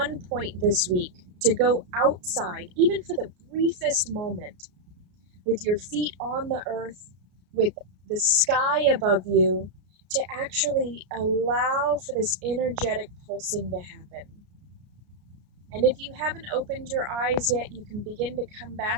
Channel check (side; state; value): left; late; 33 ms